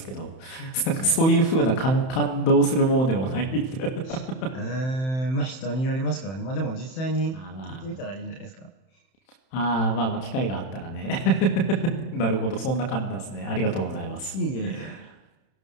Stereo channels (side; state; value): right; late; 31 ms